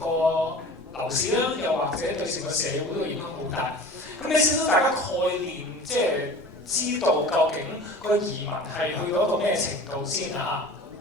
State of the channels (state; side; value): normal; both; correlation 0.39